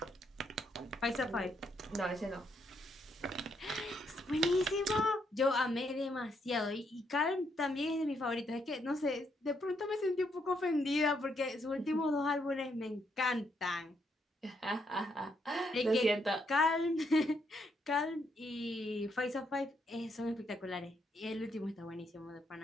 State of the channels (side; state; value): both; normal; correlation 0.75